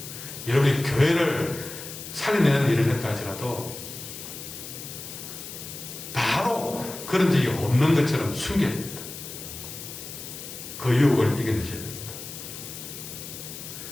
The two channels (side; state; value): left; noise; hiss, 11 dB below the sound